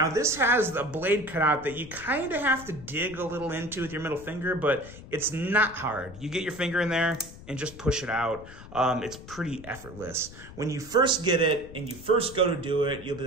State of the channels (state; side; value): noise; left; rumble, 16 dB below the sound